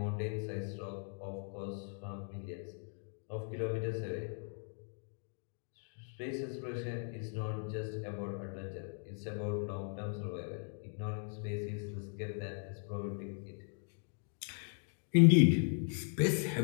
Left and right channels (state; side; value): silent; right; 52 dB below the other